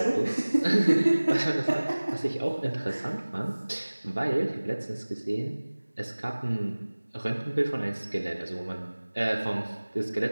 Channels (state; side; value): inverted; both; correlation -1.00